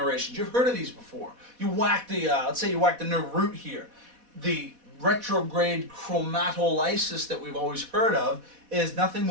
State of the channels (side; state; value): left; late; 4.1 ms